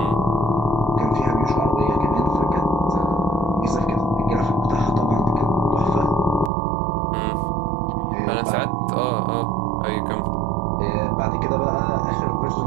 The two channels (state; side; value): drops out; left; at 6.5 s